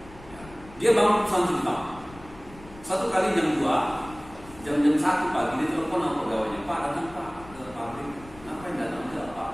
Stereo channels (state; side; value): noise; left; rumble, 20 dB below the sound